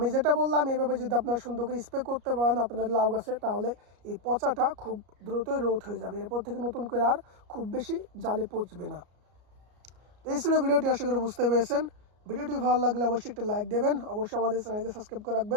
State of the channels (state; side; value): late; left; 33 ms